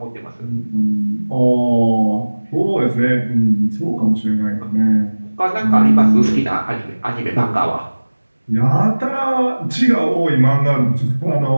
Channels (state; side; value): inverted; both; correlation -1.00